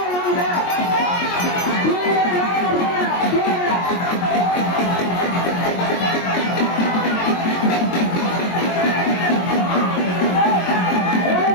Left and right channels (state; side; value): late; right; 22 ms